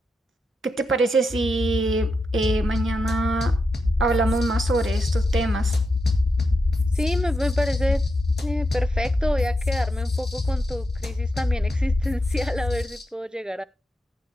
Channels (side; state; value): both; normal; correlation 0.86